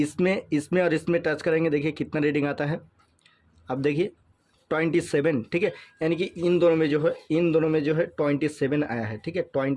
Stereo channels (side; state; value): both; identical; correlation 1.00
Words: और इसमें टच करेंगे, देखिए कितना रीडिंग आता है, अब देखिए 27, ठीक है, यानी कि इन दोनों में जो है 27 आया है, ठीक है,